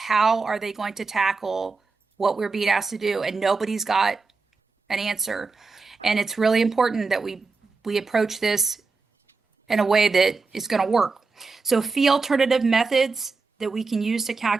are they going to tackle what we're being asked to do, and nobody's got an answer. And it's really important that we approach this in a way that is going to work. So fee alternative methods that we can use to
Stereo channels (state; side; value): quieter; left; 4.2 dB